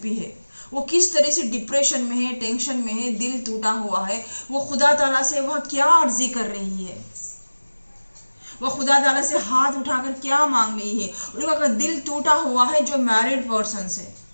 भी है, वो किस तरह से डिप्रेशन में है, टेंशन में है, दिल टूटा हुआ है, वो खुदा ताला से वह क्या अर्जी कर रही है, वो खुदा ताला से हाथ उठाकर क्या मांग रही है। उनका दिल टूटा हुआ है जो मैरिड पर्सन से,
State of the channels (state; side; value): inverted; both; correlation -1.00